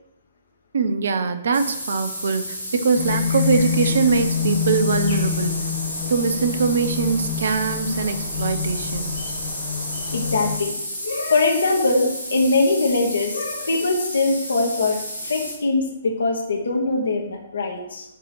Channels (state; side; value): inverted; both; correlation -0.63